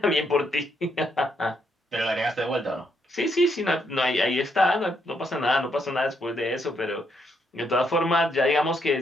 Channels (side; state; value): both; normal; correlation 0.76